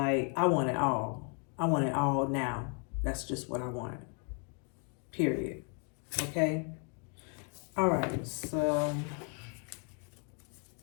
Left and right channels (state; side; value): quieter; right; 39.3 dB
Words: I want it all. I want it all now. That's just what I want. Period. Okay? All right, so...